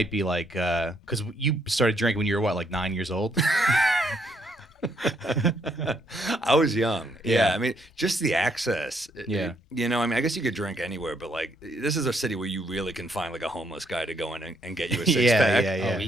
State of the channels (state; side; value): normal; both; correlation 0.72